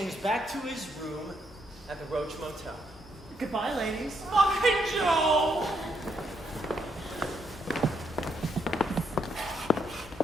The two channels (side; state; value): both; normal; correlation 0.76